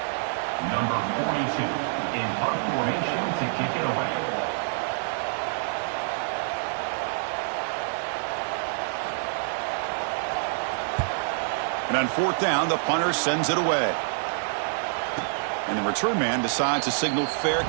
Number 42 in punt formation to kick it away. And on fourth down, the punter sends it away. And the return man decides to signal fair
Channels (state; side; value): silent; left; digital silence